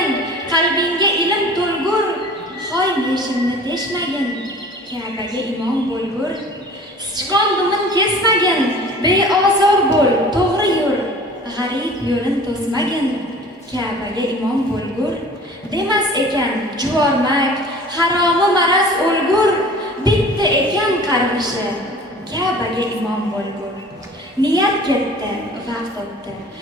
qalbingga ilm to'lgur, hoy meshimni teshmagin, Ka'baga imom bo'lgur. Sichqon dumin kesmagin, beozor bo'l, to'g'ri yur, g'arib yo'lin to'smagin, Ka'baga imom bo'lgur. Demas ekan juvormak, haromi maraz o'lgur, bitta ekan qarg'ishi, Ka'baga imom bo'lgur. Niyat ketdi, vaqt o'tdi.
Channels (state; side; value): normal; both; correlation 0.45